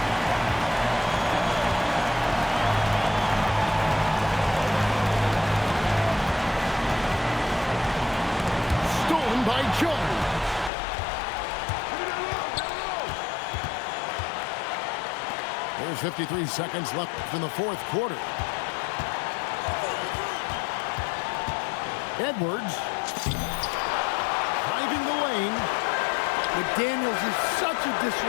Stolen by Jones. There's 53 seconds left in the fourth quarter. Edwards driving the lane. McDaniels is such a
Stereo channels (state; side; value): drops out; right; at 10.7 s